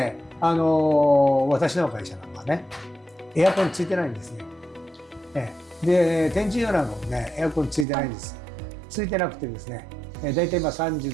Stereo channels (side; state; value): left; drops out; at 7.9 s